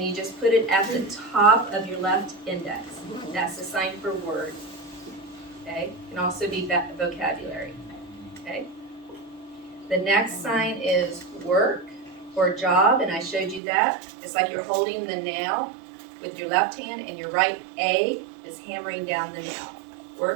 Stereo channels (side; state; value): left; drops out; at 13.6 s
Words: you just put it at the top of your left index. That's the sign for word. Okay, it can also be vocabulary. Okay. The next sign is work or job, and I showed you that. It's like you're holding the nail with your left hand, and your right A is hammering down the nail.